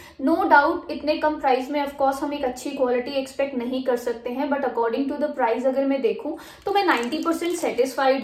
नो डाउट इतने कम प्राइस में ऑफकोर्स हम एक अच्छी क्वालिटी एक्सपेक्ट नहीं कर सकते हैं, but according to the price अगर मैं देखूं तो मैं 90%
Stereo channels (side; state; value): both; identical; correlation 1.00